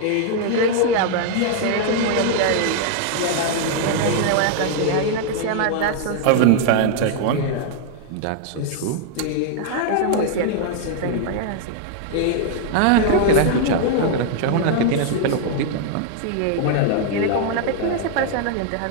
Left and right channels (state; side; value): different; both; correlation 0.00